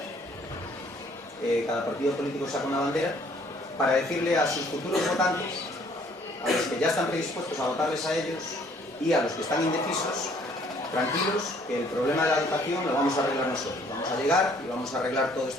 cada partido político saca una bandera, para decirle a sus futuros votantes, a los que ya están predispuestos a votarles a ellos y a los que están indecisos, tranquilos, que el problema de la educación lo vamos a arreglar nosotros. Vamos a llegar y vamos a arreglar todo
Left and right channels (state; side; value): normal; both; correlation 0.61